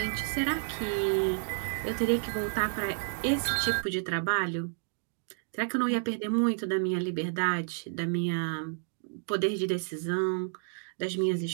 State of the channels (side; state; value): left; silent; 57 dB below the other